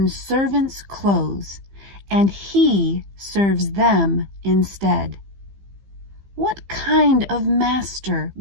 servants' clothes and he serves them instead. What kind of master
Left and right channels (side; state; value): left; late; 15 ms